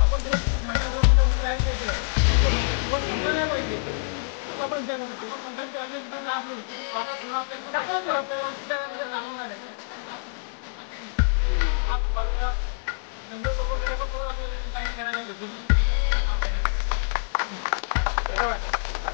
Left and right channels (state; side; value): silent; right; digital silence